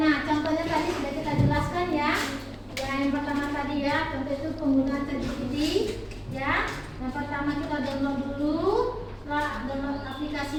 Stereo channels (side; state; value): both; identical; correlation 1.00